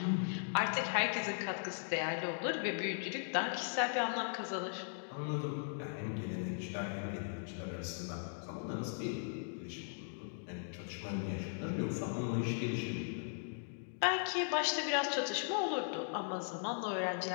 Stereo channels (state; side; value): silent; right; digital silence